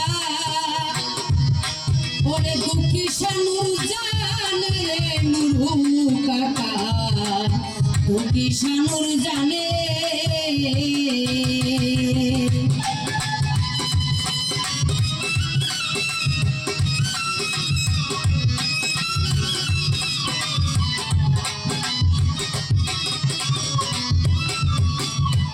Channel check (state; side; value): identical; both; correlation 1.00